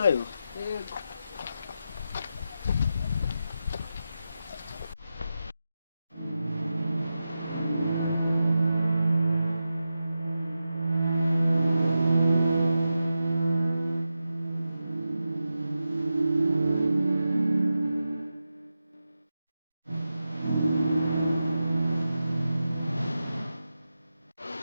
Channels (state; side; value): inverted; both; correlation -0.90